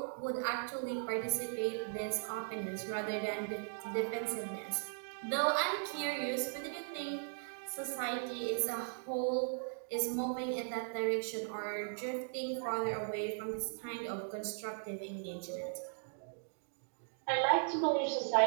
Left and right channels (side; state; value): left; silent; digital silence